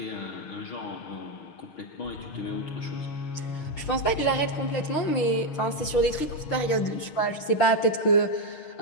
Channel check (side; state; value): right; late; 6.5 ms